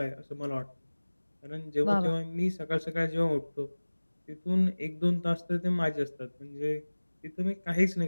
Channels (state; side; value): inverted; both; correlation -1.00